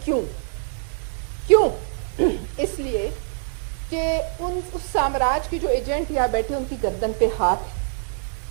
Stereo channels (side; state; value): left; silent; 61 dB below the other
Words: क्यों? इसलिए कि उस साम्राज्य के जो एजेंट यहाँ बैठे उनकी गर्दन पे हाथ